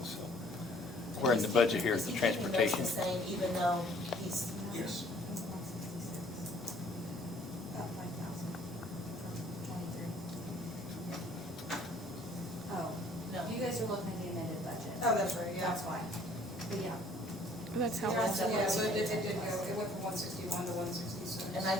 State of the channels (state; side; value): normal; both; correlation 0.58